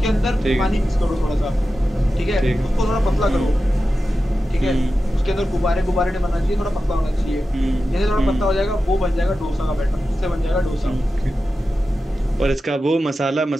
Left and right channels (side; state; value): both; normal; correlation 0.92